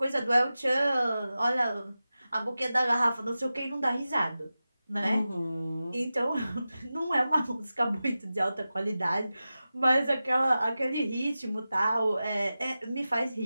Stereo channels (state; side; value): inverted; both; correlation -0.94